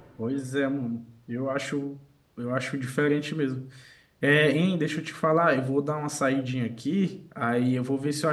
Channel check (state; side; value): identical; both; correlation 1.00